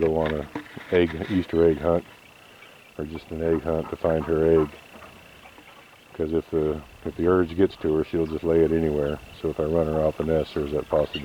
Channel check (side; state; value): both; identical; correlation 1.00